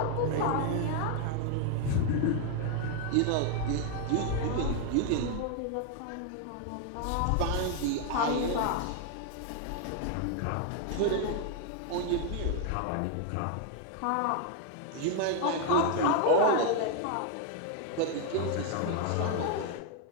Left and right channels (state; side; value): different; both; correlation 0.00